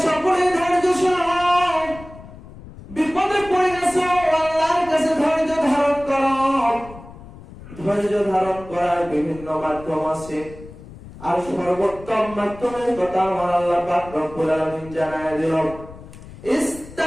সকলেই ধৈর্যশীল হও। বিপদে পড়ে গেছো, আল্লাহর কাছে ধৈর্য ধারণ করো। ধৈর্য ধারণ করার বিভিন্ন মাধ্যম আছে, আর সর্বোত্তম মাধ্যমের কথা আমার আল্লাহ পাক রব্বুল আলামিন জানায় দিলেন,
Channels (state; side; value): noise; left; rumble, 17 dB below the sound